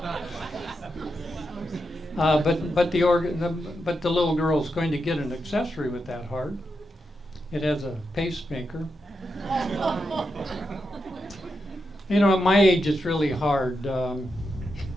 But the little girl's going to get an accessory with that heart. It has a pacemaker. At my age, it's really hard. A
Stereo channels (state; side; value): normal; both; correlation 0.86